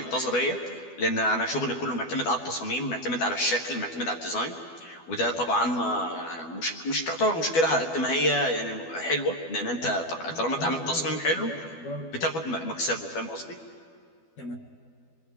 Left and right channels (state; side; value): late; right; 12 ms